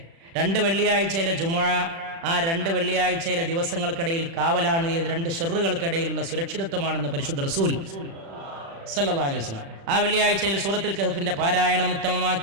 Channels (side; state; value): left; late; 36 ms